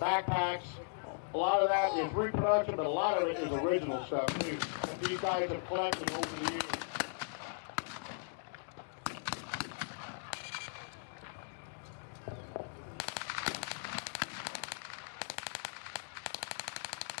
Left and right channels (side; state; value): right; silent; digital silence